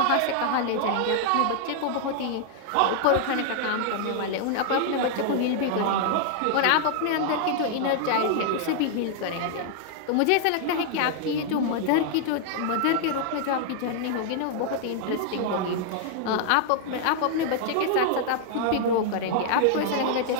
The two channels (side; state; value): both; different; correlation 0.00